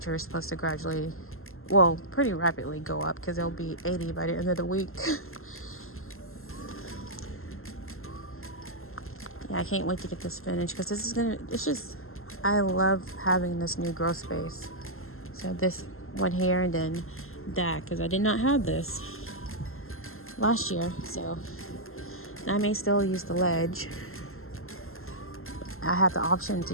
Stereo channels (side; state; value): right; late; 0.62 ms